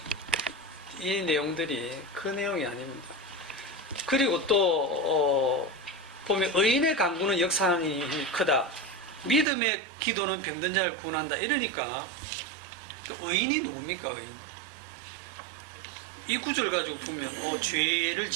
이 내용들이 그 내용이 아닙니다. 그리고 또 보면 의인의 간구는 역사하는 힘이 크다. 믿음의 기도는 병든 자를 구원한다. 이러니까 의인이 누굽니까? 의인. 이 구절 가지고 보면 죄를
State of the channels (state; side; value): drops out; left; at 9.5 s